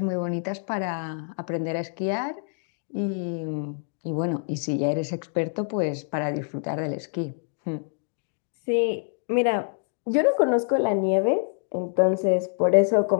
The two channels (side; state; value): right; silent; 61 dB below the other